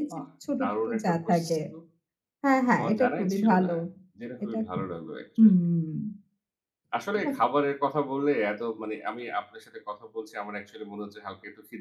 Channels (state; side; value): identical; both; correlation 1.00